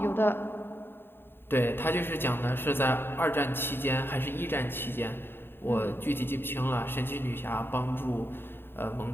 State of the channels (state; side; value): late; right; 0.11 ms